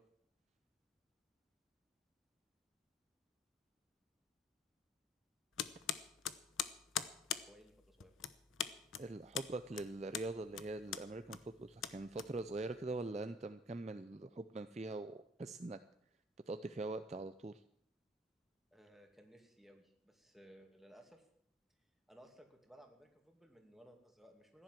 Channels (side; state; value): both; normal; correlation 0.52